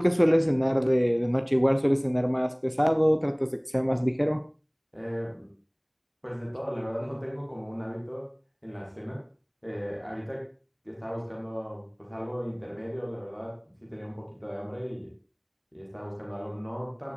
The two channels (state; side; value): identical; both; correlation 1.00